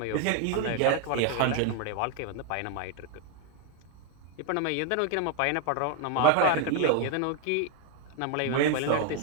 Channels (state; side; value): different; both; correlation 0.01